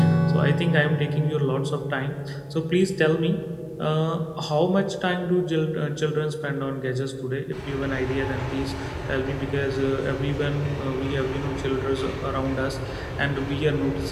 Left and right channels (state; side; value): identical; both; correlation 1.00